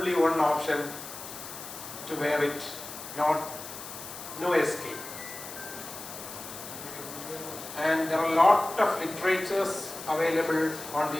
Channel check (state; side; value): noise; left; hiss, 11 dB below the sound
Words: one option to wear it, no escape. And there are a lot of literatures available on the